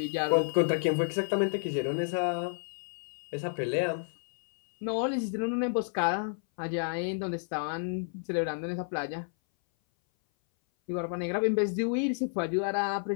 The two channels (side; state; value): right; silent; 57 dB below the other